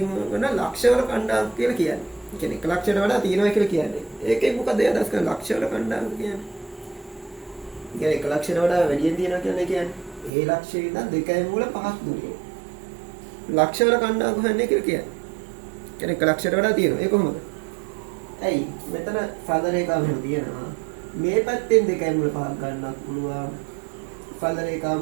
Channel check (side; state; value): left; drops out; at 10.3 s